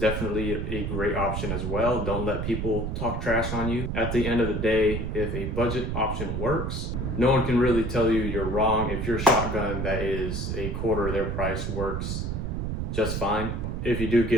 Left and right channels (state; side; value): noise; right; rumble, 2 dB below the sound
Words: a great option as well. Don't let people talk trash on you. At the end of the day, if a budget option works, no one can really tell you you're wrong. If your shotgun that is a quarter of their price works just fine. If you do